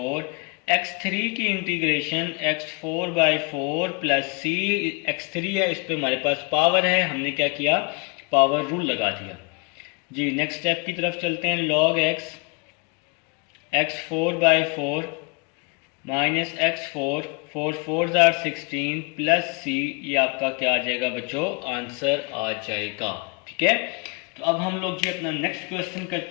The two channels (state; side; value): quieter; right; 30.9 dB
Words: x3 की integration x4/4 plus c, x3 है इस पे हमारे पास पावर है, हमने क्या किया, पावर रूल लगा दिया जी। नेक्स्ट स्टेप की तरफ चलते हैं, log x x4/4 minus x4, 4 4 = 16 plus c, ये आपका क्या आ जाएगा बच्चों, आंसर आ जाएगा। ठीक है, तो अब हम लोग जी अपना नेक्स्ट क्वेश्चन